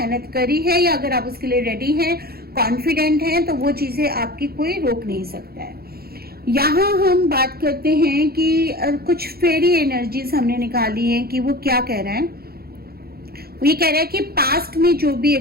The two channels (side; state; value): left; late; 0.45 ms